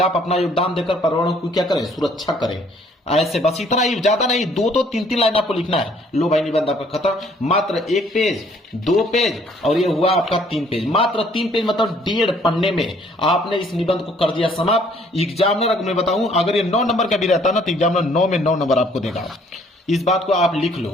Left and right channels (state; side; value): normal; both; correlation 0.61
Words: अपना योगदान देकर पर्यावरण को क्या करें, सुरक्षा करें। ऐसे बस इतना ही, ज्यादा नहीं, 2 तो 3 लाइन आपको लिखना है। लो भाई, निबंध आपका खत्म। मात्र 1 पेज, 2 पेज और ये हुआ आपका 3 पेज। मात्र 3 पेज मतलब 1.5 पन्ने में आपने इस निबंध को कर दिया समाप्त। एग्जामिनर, अगर मैं बताऊं, अगर ये 9 नंबर का भी रहता ना तो एग्जामिनर 9 में 9 नंबर आपको देगा। इस बात को आप लिख